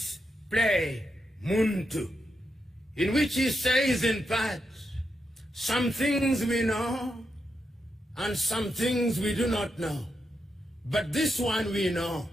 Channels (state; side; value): normal; both; correlation 0.84